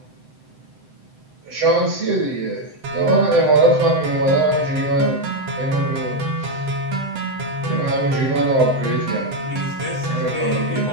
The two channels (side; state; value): left; late; 7.8 ms